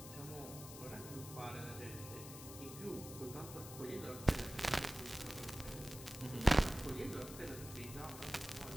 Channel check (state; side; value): noise; left; hiss, 12 dB below the sound